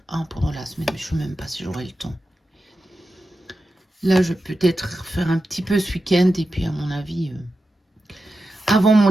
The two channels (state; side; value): normal; both; correlation 0.91